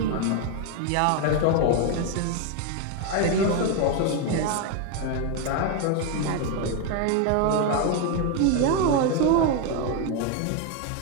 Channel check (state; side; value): different; both; correlation 0.02